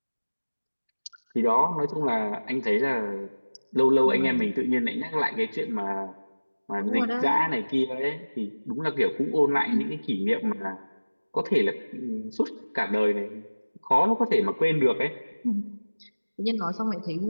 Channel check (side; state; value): both; inverted; correlation -1.00